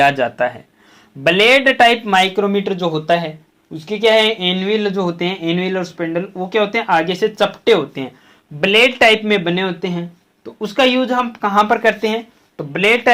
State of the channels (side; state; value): both; identical; correlation 1.00